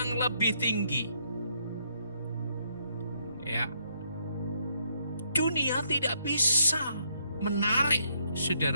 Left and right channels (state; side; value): inverted; both; correlation -0.73